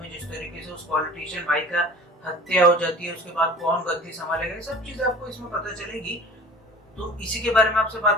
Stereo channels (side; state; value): both; normal; correlation 0.43